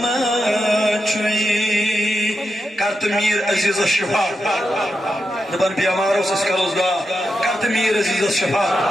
چوئی کرت میر عزیز الشفا دبن بیماروں سے سکروز گا کرت میر عزیز الشفا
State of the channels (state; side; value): normal; both; correlation 0.87